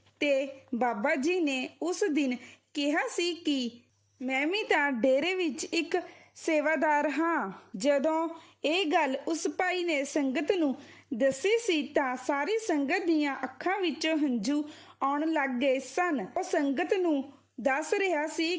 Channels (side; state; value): both; identical; correlation 1.00